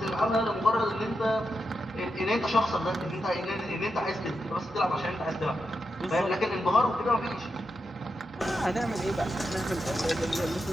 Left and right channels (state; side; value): normal; both; correlation 0.87